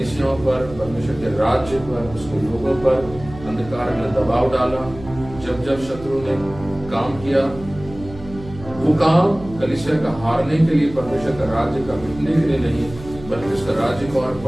पर, परमेश्वर के राज्य पर, उसके लोगों पर अंधकार ने दबाव डाला, जब जब शत्रु ने काम किया, वो काम कलीसिया का हारने के लिए, परमेश्वर का राज्य का मिटने के लिए नहीं, बल्कि उसका राज्य को और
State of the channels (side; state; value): right; noise; hum, 15 dB below the sound